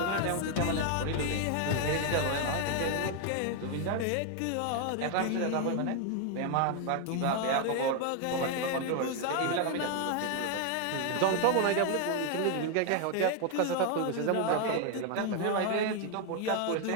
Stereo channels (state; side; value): different; both; correlation 0.01